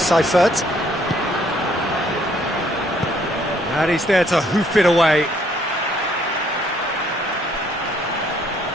And he's there to hoof it away.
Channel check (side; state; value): both; normal; correlation 0.65